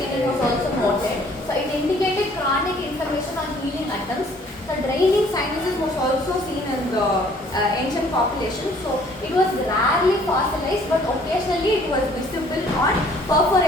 was also noted. So it indicated chronic inflammation on healing attempts. So draining sinuses was also seen in the ancient population. So it was rarely fossilized, but occasionally it was visible on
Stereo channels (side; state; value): both; normal; correlation 0.58